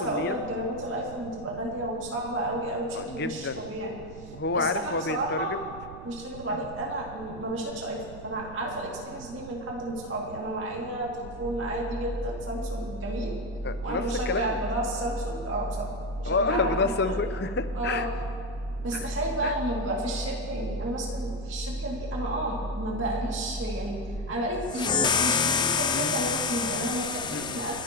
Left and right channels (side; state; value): right; noise; rumble, 14 dB below the sound